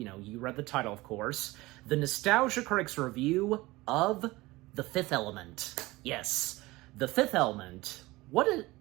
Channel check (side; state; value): left; quieter; 20.4 dB